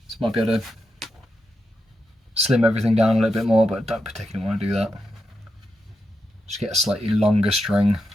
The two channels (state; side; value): normal; both; correlation 0.86